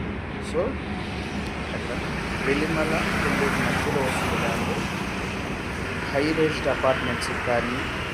సో అట్లా వెల్లిమల మధ్యలో వస్తుంది ల్యాండ్. హై రేంజ్డ్ అపార్ట్మెంట్స్కి కానీ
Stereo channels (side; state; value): both; identical; correlation 1.00